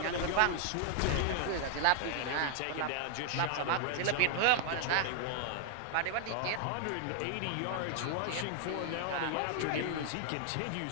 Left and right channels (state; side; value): different; both; correlation 0.00